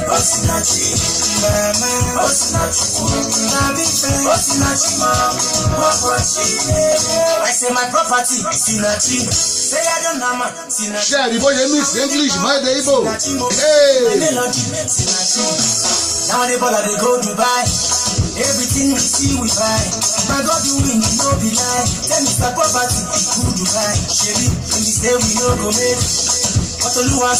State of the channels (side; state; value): both; identical; correlation 1.00